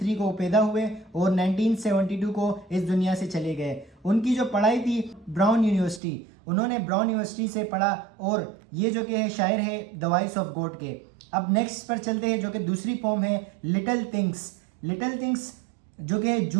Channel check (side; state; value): left; drops out; at 6.0 s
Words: को पैदा हुए और 1972 को इस दुनिया से चले गए। उनकी जो पढ़ाई थी ब्राउन यूनिवर्सिटी, उन्होंने ब्राउन यूनिवर्सिटी से पढ़ा और ये जो कि है शायर है द वॉइस ऑफ गॉड के। अब नेक्स्ट पर चलते हैं जो कि दूसरी पोम है लिटिल थिंग्स। लिटिल थिंग्स जो कि